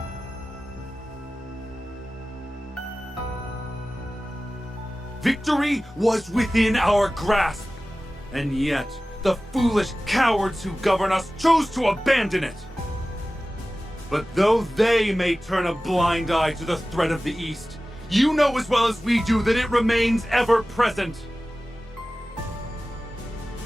Victory was within our grasp, and yet the foolish cowards who govern us chose to abandon it. But though they may turn a blind eye to the threat of the East, you know as well as we do that it remains ever present.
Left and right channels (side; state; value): both; normal; correlation 0.96